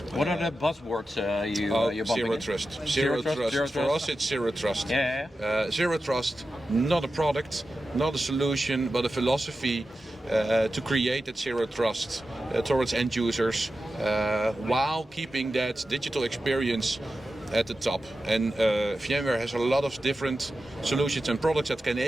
What are the buzzwords you're bumping zero in? trust. Zero trust. For us, it's zero trust. Yeah. Zero trust, not a product, not a solution, but a philosophy to create that zero trust towards end users while keeping that digital experience at the top. And VMware has a lot of different solutions and products that can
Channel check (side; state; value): both; normal; correlation 0.92